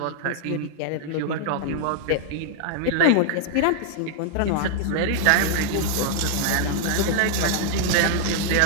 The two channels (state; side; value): different; both; correlation 0.00